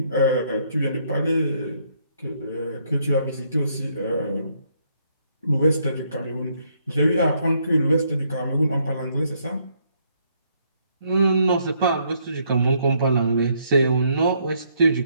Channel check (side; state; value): both; inverted; correlation -0.71